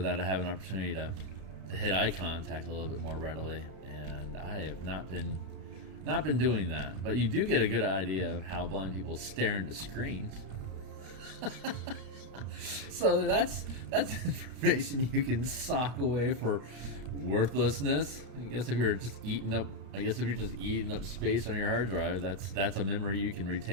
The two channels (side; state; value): left; late; 32 ms